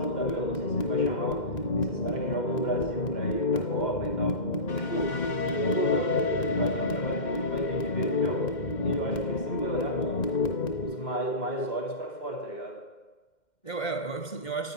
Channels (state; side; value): late; right; 2.1 ms